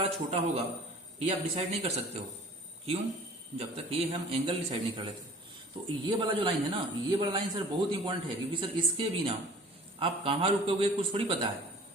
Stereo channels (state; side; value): normal; both; correlation 0.47